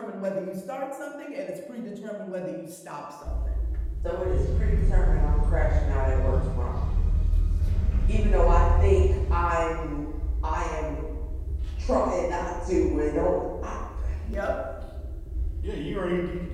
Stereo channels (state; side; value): identical; both; correlation 1.00